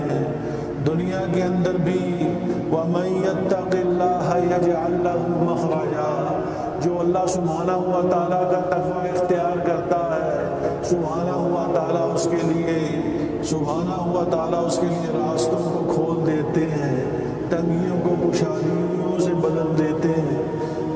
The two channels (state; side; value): identical; both; correlation 1.00